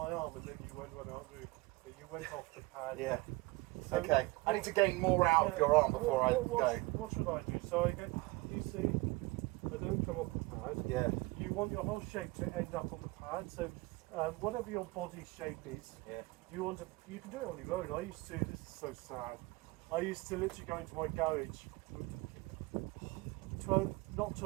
arm, and then you won't run out of room. So you went off the pad. Yeah. So Okay. I need to gain more out of your arm before I go. What should I do? So I get. You see, I don't come off the pad. Yeah. You want your whole shape to end up on the pad. So whatever your body shape is, Yeah. you can do it on your own. I used to. This is so sad. I used to literally go into my garage, not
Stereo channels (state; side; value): quieter; left; 22.8 dB